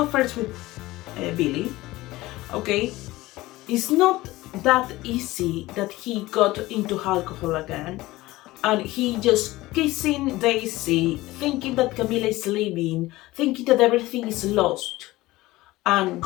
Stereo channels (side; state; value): right; quieter; 18.6 dB